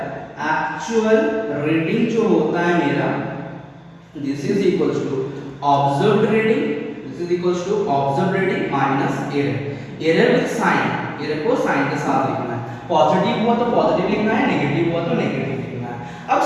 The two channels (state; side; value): identical; both; correlation 1.00